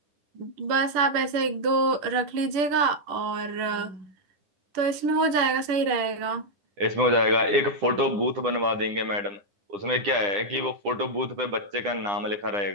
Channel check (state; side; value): late; left; 10 ms